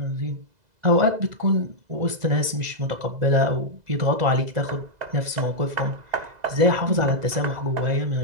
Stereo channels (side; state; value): left; late; 2.0 ms